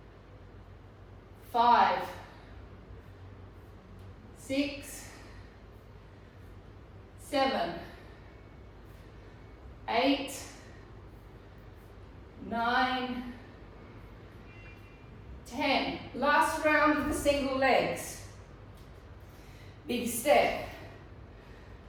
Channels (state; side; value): identical; both; correlation 1.00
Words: 5, 6, 7, 8, 9, 10. Last round of the single legs. Big step.